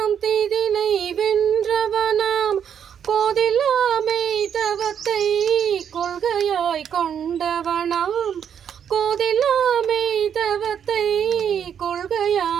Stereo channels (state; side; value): quieter; left; 8.3 dB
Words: திதினை வென்றவனாம் கோதிலாமை தவத்தை கொள்கையாய் கொண்டவனாம் கோதிலாமை தவத்தை